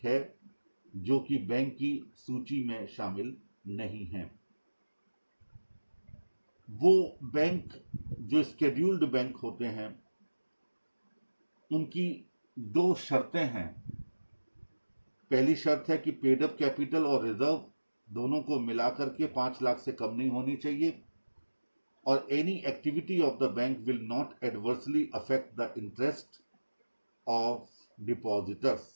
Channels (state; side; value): inverted; both; correlation -1.00